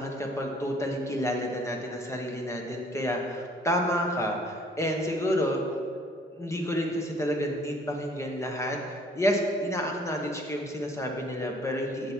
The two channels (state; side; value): normal; both; correlation 0.58